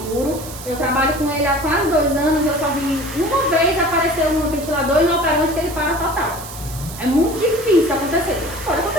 Eu trabalho com ele há quase 2 anos, eu só vi uma vez aparecer um ventilador e no operante que ele para total. É muito difícil acontecer. Pode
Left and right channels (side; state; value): right; noise; hiss, 13 dB below the sound